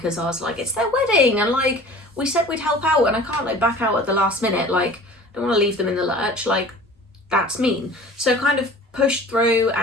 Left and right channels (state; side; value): normal; both; correlation 0.43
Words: I was like, it's their wedding, and like we said we'd help out, and I can't like back out at the last minute. Like, I don't want to leave them in the lurch. Like, that's mean. So kind of pushed through,